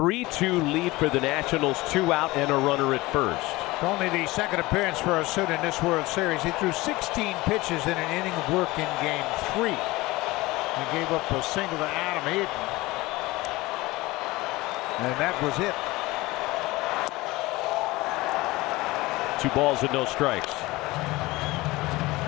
lead for the Nationals, 2 out and a runner at first. Only the 2nd appearance for Osuna in this World Series. He threw 16 pitches in an inning of work in Game 3. He gave up a single to Adam Eaton, and that was it. 2 balls and no strikes.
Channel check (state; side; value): quieter; right; 20.5 dB